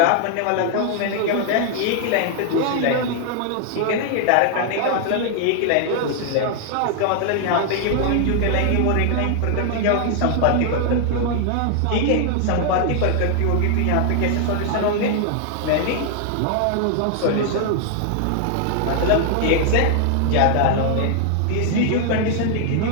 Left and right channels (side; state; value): both; different; correlation 0.00